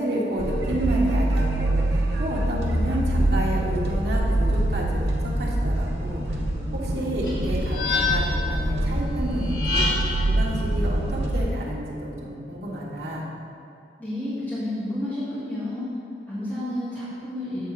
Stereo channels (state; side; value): normal; both; correlation 0.79